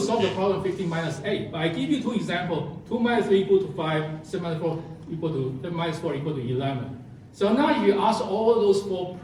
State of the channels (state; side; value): identical; both; correlation 1.00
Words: the problem 15 minus 8, but I give you 2 examples. 2 minus 3 equal to 5, 7 minus 4 equal to 10 minus 4 equal to 11. So now if you ask all those 4